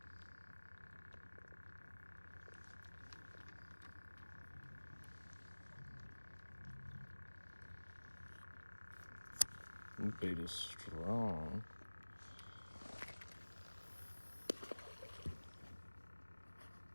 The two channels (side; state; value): both; inverted; correlation -1.00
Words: Bait is strong.